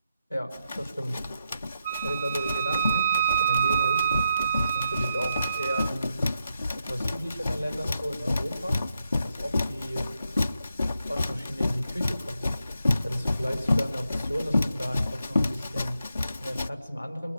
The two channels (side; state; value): both; inverted; correlation -0.84